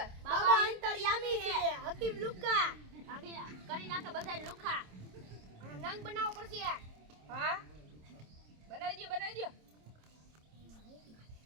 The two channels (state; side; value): late; left; 27 ms